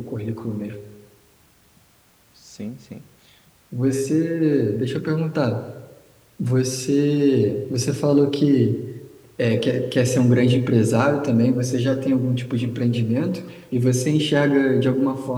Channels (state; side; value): identical; both; correlation 1.00